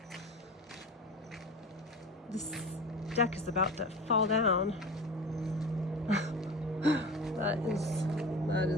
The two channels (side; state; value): both; normal; correlation 0.31